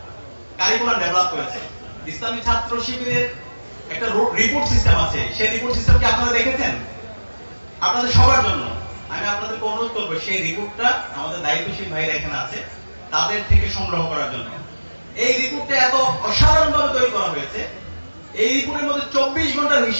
কারিকুলাম ডেভেলপ করেছে। ইসলামী ছাত্র শিবিরের একটা রিপোর্ট সিস্টেম আছে, সেই রিপোর্ট সিস্টেম কি আপনারা দেখেছেন? আপনাদের সবার জন্য আমি আপনাদেরকে অনুরোধ করবো সেই রিপোর্টটা আমাদের দায়িত্বশীল ভাইরা এখানে আছে তাদের থেকে সংগ্রহ করার জন্য। এই রিপোর্টটা এত অসাধারণ ভাবে তৈরি করা হয়েছে, এই রিপোর্টের মধ্যে 24 ঘন্টার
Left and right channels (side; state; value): both; inverted; correlation -1.00